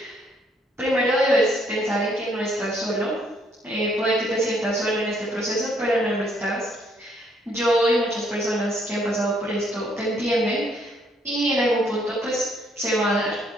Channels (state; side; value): normal; both; correlation 0.68